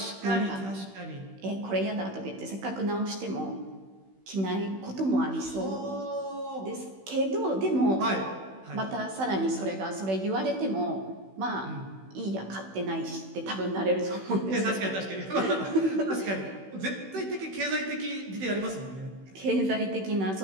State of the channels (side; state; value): left; late; 16 ms